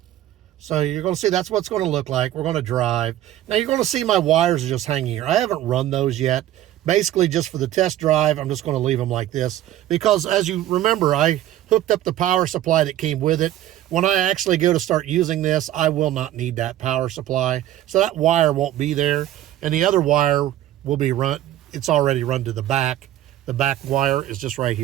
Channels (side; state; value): left; quieter; 13.2 dB